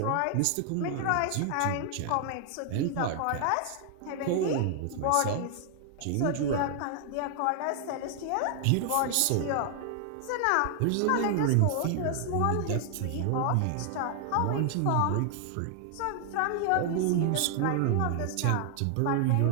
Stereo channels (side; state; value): both; different; correlation 0.00